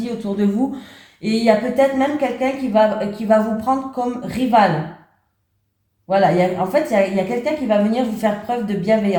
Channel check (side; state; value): both; identical; correlation 1.00